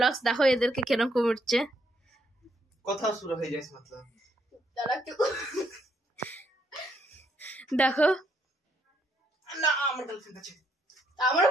দেখো এদেরকে কিরকম উঠছে, কথা শুরু হয়ে যায় मतलब তারা একটু দেখো না আমার গার্লফ্রেন্ড আছে, আমারও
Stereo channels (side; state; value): both; normal; correlation 0.73